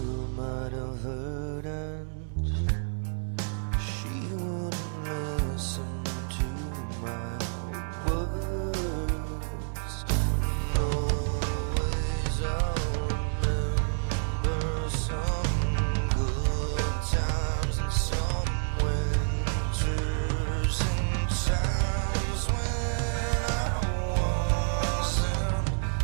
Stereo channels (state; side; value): silent; left; digital silence